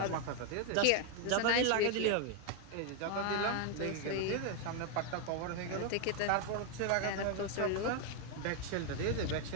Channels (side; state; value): both; different; correlation 0.01